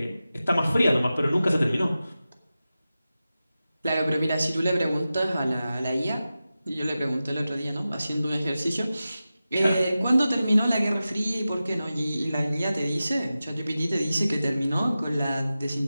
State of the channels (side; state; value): both; inverted; correlation -0.94